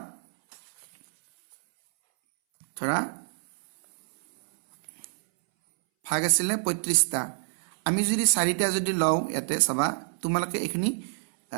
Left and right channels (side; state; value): left; silent; 60 dB below the other